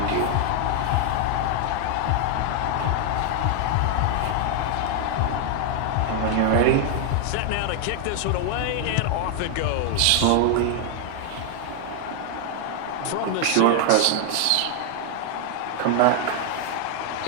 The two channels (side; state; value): both; different; correlation 0.00